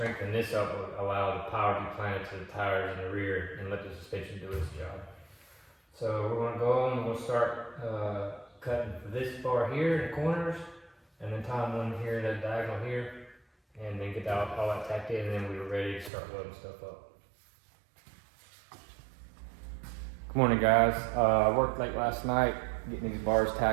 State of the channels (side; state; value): left; drops out; at 16.1 s